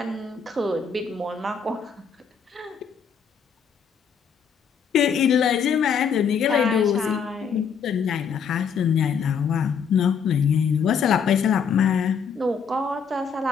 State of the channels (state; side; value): quieter; right; 6.5 dB